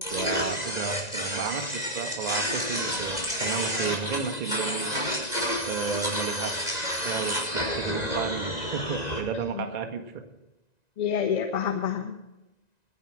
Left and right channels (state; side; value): late; right; 1.9 ms